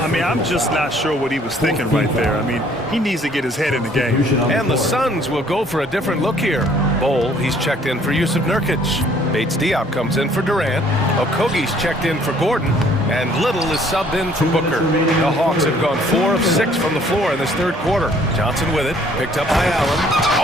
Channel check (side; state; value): both; normal; correlation 0.60